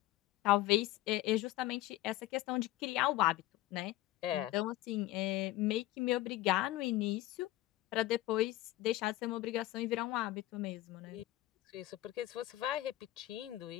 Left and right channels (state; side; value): quieter; right; 16.0 dB